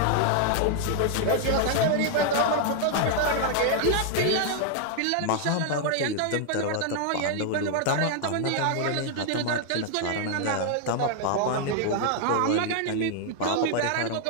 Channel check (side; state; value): both; different; correlation 0.00